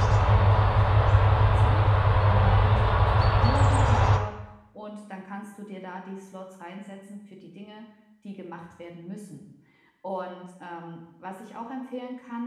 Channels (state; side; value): identical; both; correlation 1.00